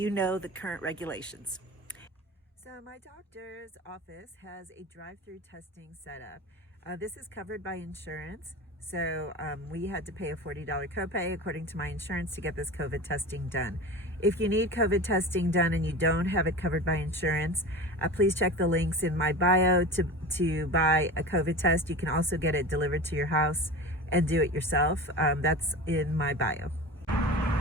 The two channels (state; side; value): normal; both; correlation 0.31